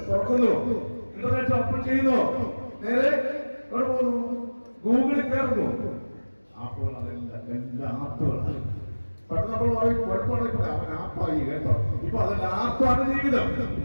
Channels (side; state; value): both; inverted; correlation -1.00